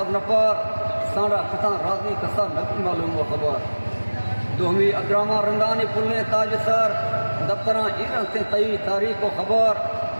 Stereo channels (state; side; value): inverted; both; correlation -1.00